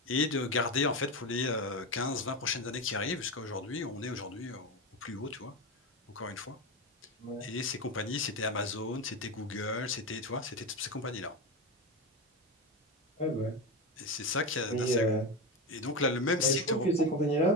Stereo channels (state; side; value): normal; both; correlation 0.18